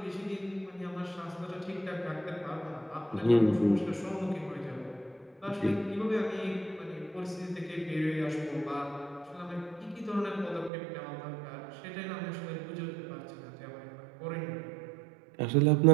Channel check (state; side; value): drops out; left; at 10.7 s